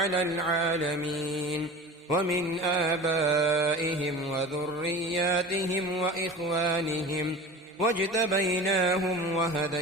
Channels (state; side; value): normal; both; correlation 0.35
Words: العالمين ومن آبائهم وذرياتهم وإخوانهم واجتبيناهم